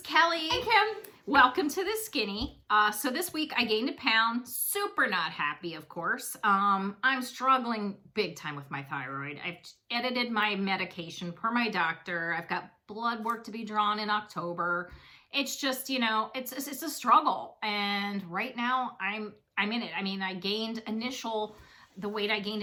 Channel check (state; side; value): identical; both; correlation 1.00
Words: Kelly. Hey, Kim. Welcome to The Skinny. So this week I gained a pound. Super not happy, of course. I'm struggling big time with my thyroid. I've edited my medication per my doctor. I've got blood work to be drawn in October. It's just, it's a struggle. And right now I'm in it. I mean, the weight I gained